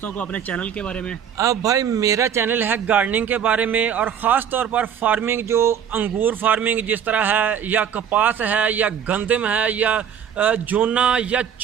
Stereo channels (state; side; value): quieter; left; 8.4 dB